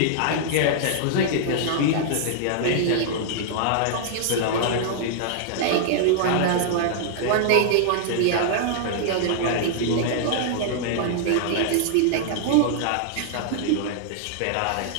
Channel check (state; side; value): different; both; correlation -0.01